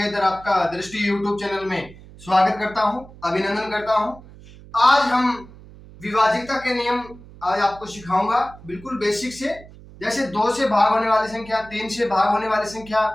आपका दृष्टि यूट्यूब चैनल में स्वागत करता हूं, अभिनंदन करता हूं। आज हम विभाज्यता के नियम आज आपको सिखाऊंगा, बिल्कुल बेसिक से। जैसे 2 से भाग होने वाली संख्या, 3 से भाग होने वाली संख्या,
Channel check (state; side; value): noise; right; hum, 20 dB below the sound